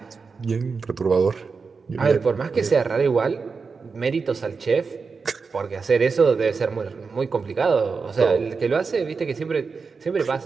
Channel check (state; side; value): quieter; left; 4.9 dB